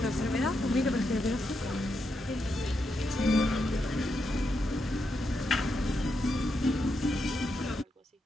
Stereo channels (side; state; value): both; normal; correlation 0.83